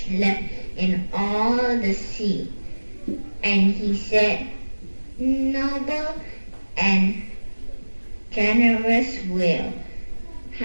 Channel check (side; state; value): both; inverted; correlation -1.00